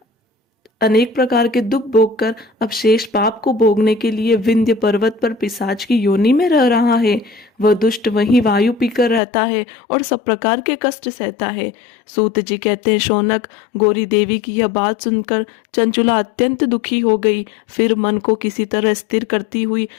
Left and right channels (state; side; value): drops out; right; at 9.2 s